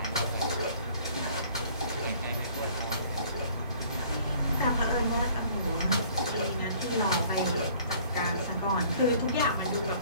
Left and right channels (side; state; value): both; inverted; correlation -0.54